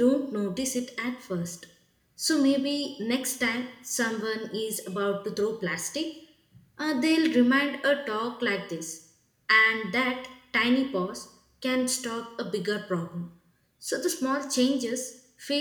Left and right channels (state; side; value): identical; both; correlation 1.00